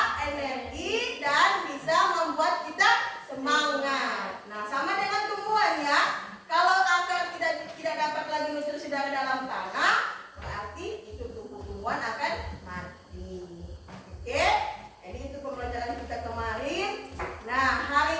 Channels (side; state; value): both; identical; correlation 1.00